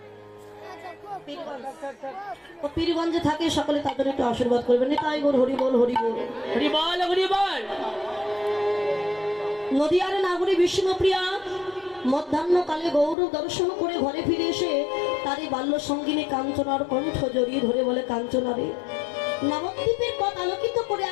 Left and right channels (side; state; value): right; drops out; at 13.2 s